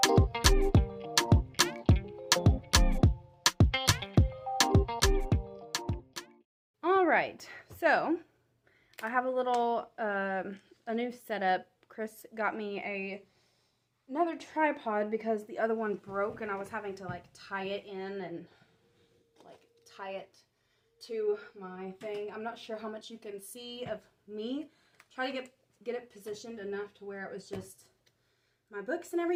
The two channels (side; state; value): both; identical; correlation 1.00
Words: All right, so I have a new setup. Chris got me another tripod because the other one broke, and I was having to tie it in and tie it to my thing. I'm not sure how much you can see of me. Try to get it positioned enough to where it was just my books and